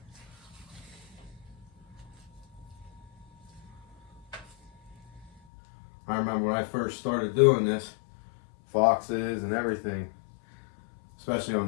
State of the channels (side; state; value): right; drops out; at 5.4 s